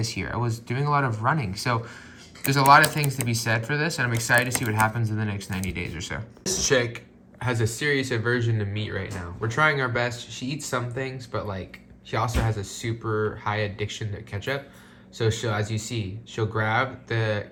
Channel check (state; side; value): identical; both; correlation 1.00